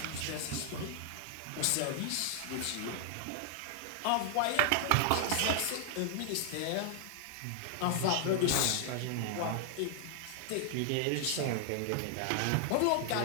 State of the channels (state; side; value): different; both; correlation 0.00